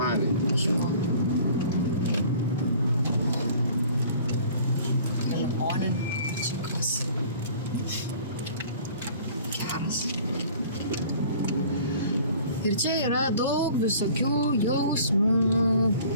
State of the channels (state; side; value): inverted; both; correlation -0.49